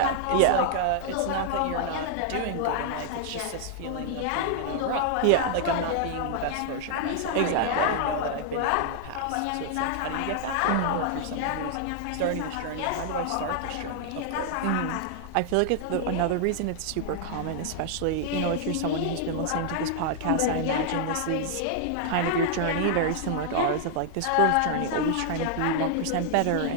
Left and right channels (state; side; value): different; both; correlation -0.01